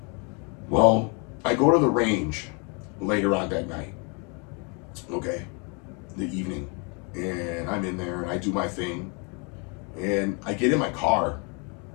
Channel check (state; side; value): quieter; right; 33.6 dB